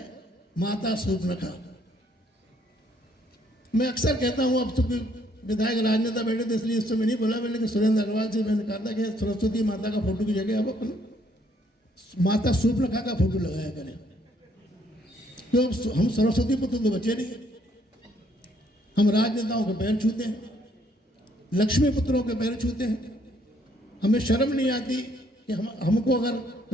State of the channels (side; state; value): both; normal; correlation 0.67